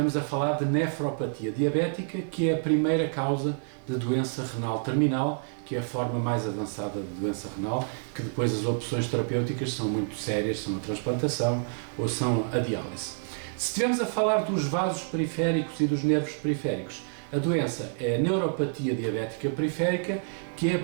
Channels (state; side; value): silent; left; digital silence